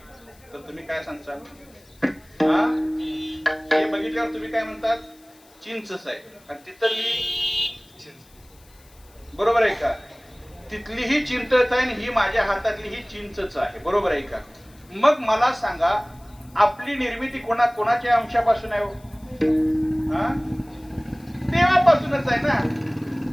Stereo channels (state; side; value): noise; left; hiss, 28 dB below the sound